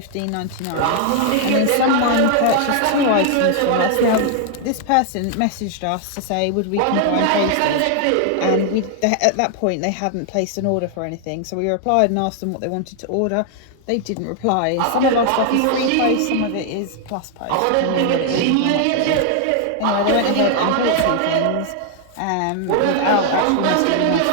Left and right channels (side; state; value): both; different; correlation 0.00